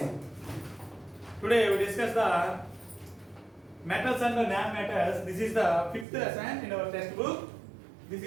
Today we discuss the metals and the non-metals. This is the fifth lesson in our textbook. This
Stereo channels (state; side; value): drops out; left; at 6.1 s